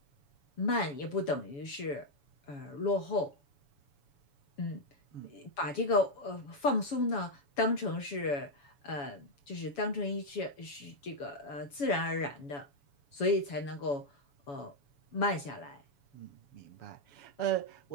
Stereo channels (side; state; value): right; late; 7.1 ms